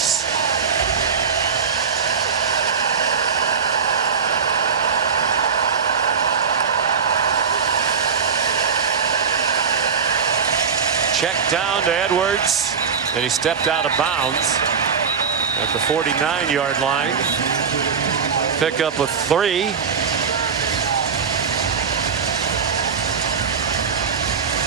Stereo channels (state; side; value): quieter; left; 6.3 dB